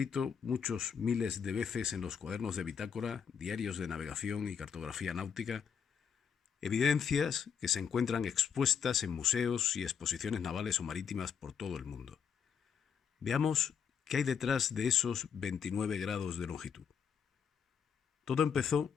muchos miles de veces en los cuadernos de bitácora, diarios de navegación y cartografía náutica, evidencias que se encuentran expuestas en museos y exposiciones navales o marítimas por todo el mundo. Veamos qué hay detrás de esos 29 grados de longitud. Todo empezó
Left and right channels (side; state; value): right; quieter; 7.2 dB